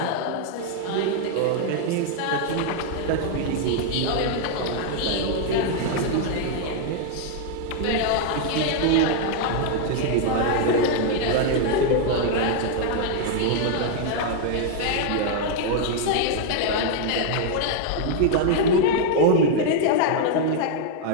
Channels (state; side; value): different; both; correlation 0.00